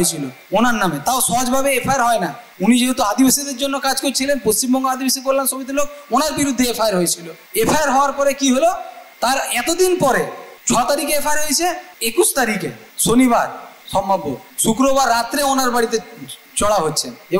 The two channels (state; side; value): identical; both; correlation 1.00